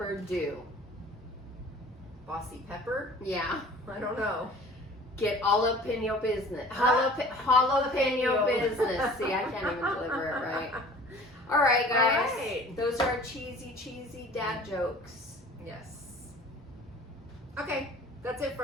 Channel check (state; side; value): normal; both; correlation 0.46